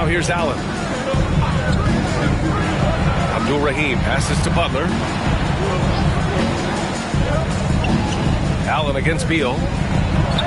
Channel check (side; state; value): both; identical; correlation 1.00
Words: here's Allen. Abdul-Rahim passes to Butler. Allen against Beal.